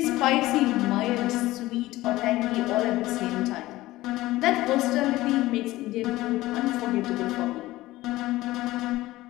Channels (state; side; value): quieter; right; 17.5 dB